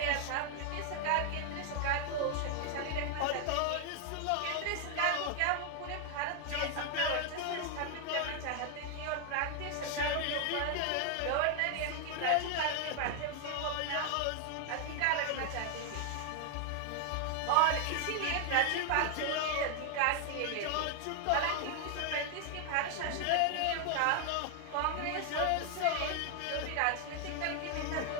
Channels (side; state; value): both; different; correlation 0.00